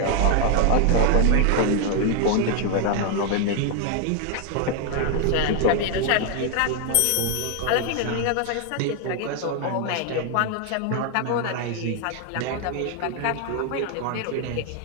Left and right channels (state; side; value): different; both; correlation 0.00